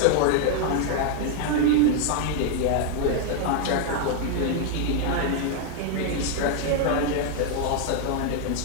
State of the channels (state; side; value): different; both; correlation 0.00